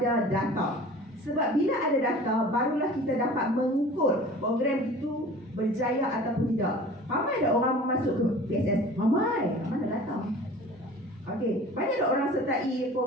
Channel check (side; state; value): both; normal; correlation 0.43